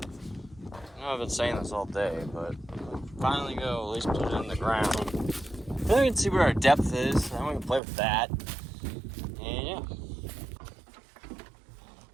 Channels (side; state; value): left; drops out; at 7.8 s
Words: I know I've been saying this all day, but finally go at least put it in the ground. Then we can see where our depth is. Then we can play with that. And yeah.